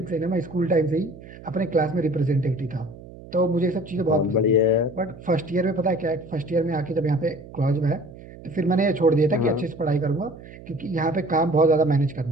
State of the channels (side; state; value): right; noise; hum, 17 dB below the sound